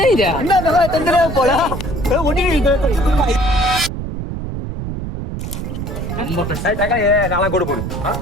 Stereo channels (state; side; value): noise; right; rumble, 6 dB below the sound